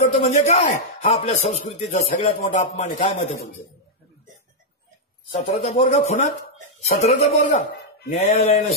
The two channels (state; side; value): normal; both; correlation -0.04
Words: म्हणजे काय? हा आपल्या संस्कृतीचा सगळ्यात मोठा अपमान आहे. काय मत आहे तुमचं? 17चा पोरगा खुनात, 17चा पोरगा. न्यायालयानं